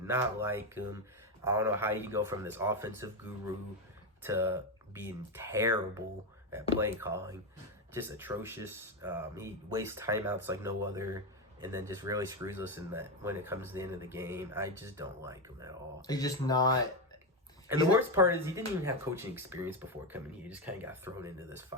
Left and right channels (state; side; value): normal; both; correlation 0.11